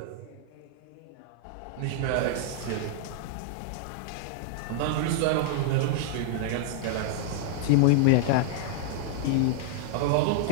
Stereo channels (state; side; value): different; both; correlation -0.01